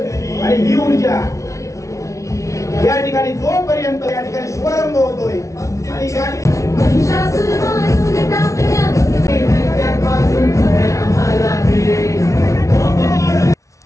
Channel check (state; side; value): late; right; 0.15 ms